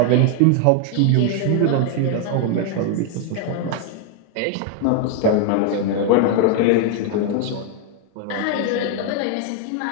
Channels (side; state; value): both; different; correlation 0.01